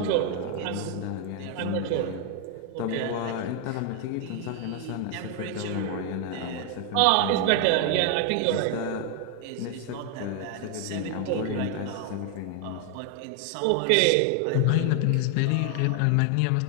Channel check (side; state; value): both; different; correlation 0.00